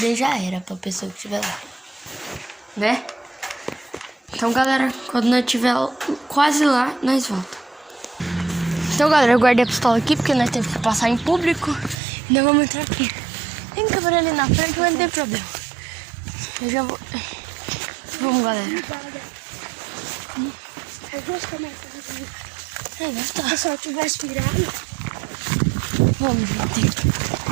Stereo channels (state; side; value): drops out; left; at 12.0 s